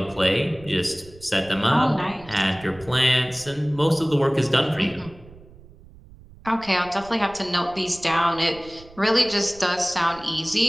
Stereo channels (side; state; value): right; noise; rumble, 21 dB below the sound